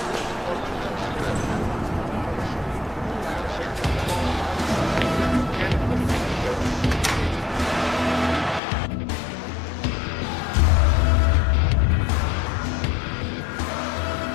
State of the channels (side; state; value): right; drops out; at 8.6 s